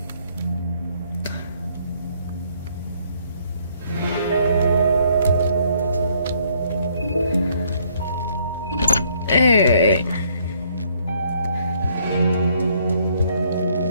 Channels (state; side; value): inverted; both; correlation -0.66